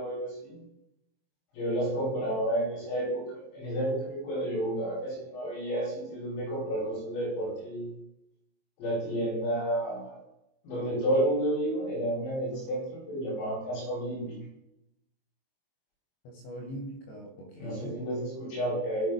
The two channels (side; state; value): right; late; 23 ms